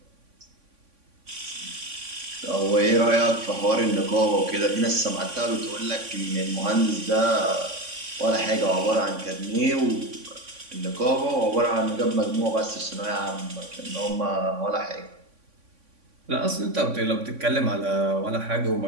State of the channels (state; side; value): late; left; 3.5 ms